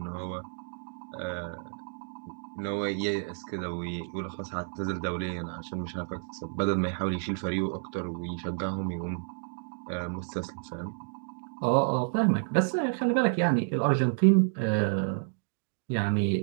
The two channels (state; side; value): silent; left; digital silence